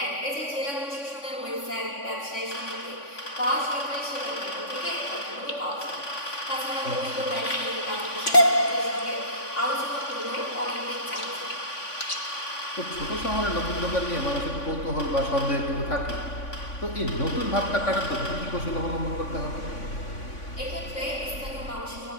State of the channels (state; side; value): late; right; 3.5 ms